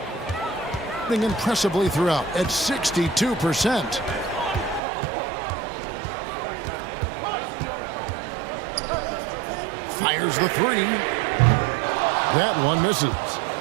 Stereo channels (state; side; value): drops out; left; at 4.8 s